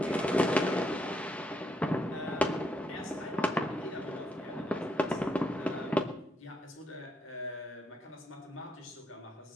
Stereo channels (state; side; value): normal; both; correlation 0.76